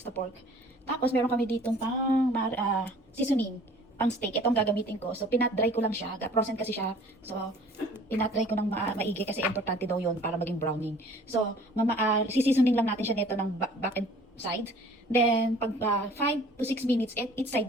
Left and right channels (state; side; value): normal; both; correlation 0.51